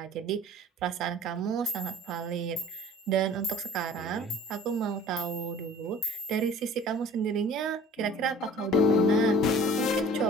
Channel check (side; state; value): both; normal; correlation 0.47